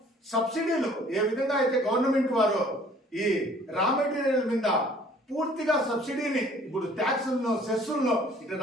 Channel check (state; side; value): normal; both; correlation 0.55